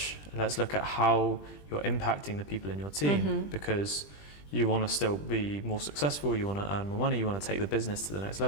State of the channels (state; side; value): late; right; 20 ms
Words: Let's look at how you're impacting the people in your team, because you want to still be more successful, you want to earn more money, you want to take the business to the next